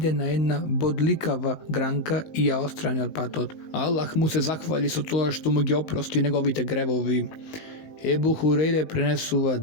на една бодликава гранка и ја отстрани од патот. Аллах му се захвали со тоа што му ги опрости неговите гревови. Ебу Хурейре пренесува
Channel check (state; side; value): late; right; 19 ms